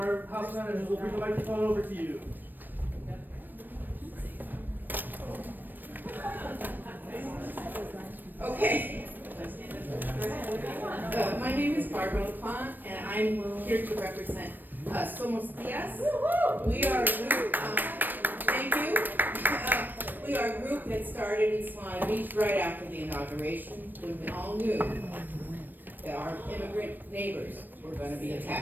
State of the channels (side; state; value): left; late; 0.092 ms